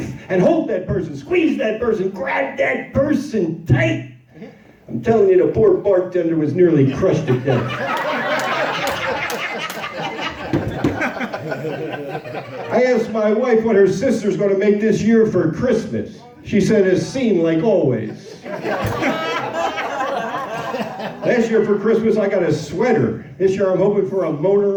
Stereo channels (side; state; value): both; identical; correlation 1.00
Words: and hold that person, squeeze that person, grab that person tight. I'm telling you, the poor bartender was nearly crushed to death. I asked my wife what her sister's going to make this year for Christmas. She said, a scene like always. Last year for Christmas, I got a sweater. This year, I'm hoping for a